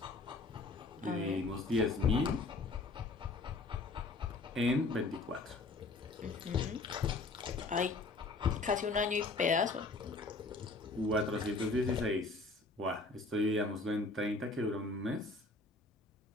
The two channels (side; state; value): right; quieter; 3.5 dB